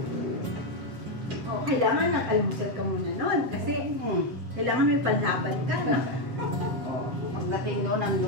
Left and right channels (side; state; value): left; late; 7.7 ms